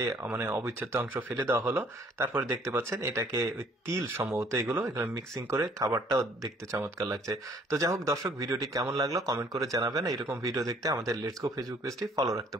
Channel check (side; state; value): both; normal; correlation 0.59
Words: অবিচ্ছেদ্য অংশ ফেলে দেওয়া হলো। তারপরে দেখতে পাচ্ছেন এটাকে ওই তিল সম্ভবত এগুলো মিক্সিং করে খাবারটাও দেখতে চমৎকার লাগছে। তো যাই হোক দর্শক, ভিডিওটি কেমন লাগলো কমেন্ট করে জানাবেন। এরকম ভিডিও দেখতে আমাদের লেটস গো ফেসবুক পেজটি ফলো রাখতে